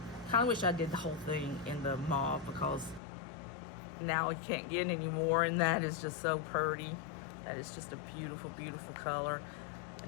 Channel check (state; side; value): drops out; right; at 3.0 s